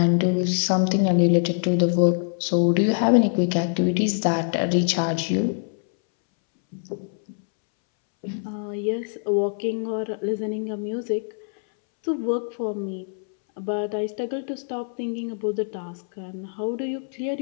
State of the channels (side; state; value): right; silent; 62 dB below the other